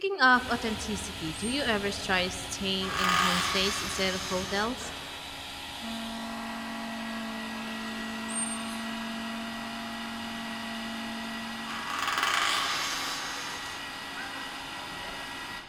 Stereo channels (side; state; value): both; identical; correlation 1.00